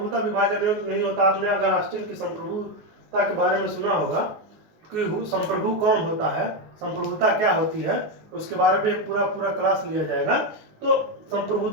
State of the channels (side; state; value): left; late; 19 ms